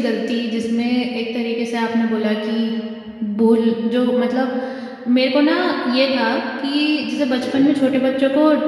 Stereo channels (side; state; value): both; identical; correlation 1.00